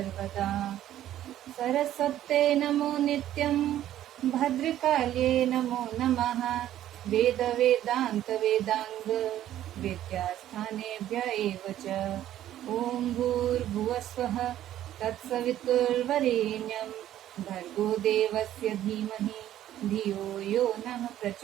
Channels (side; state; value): left; quieter; 12.4 dB